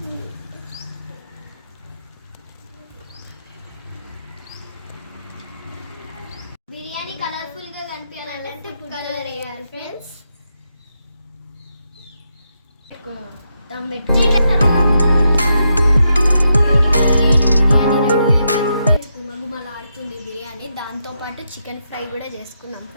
బిర్యానీ కలర్ఫుల్గా కనిపించాలంటే ఫుడ్ కలర్ వేయాలి ఫ్రెండ్స్. దమ్ పెట్టి గుమగుమలాడుతుంది బిర్యానీ. దాంతోపాటు చికెన్ ఫ్రై కూడా చేసుకున్నాం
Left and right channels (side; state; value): both; inverted; correlation -0.83